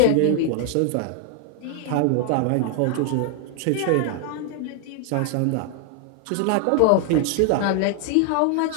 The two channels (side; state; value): both; different; correlation 0.00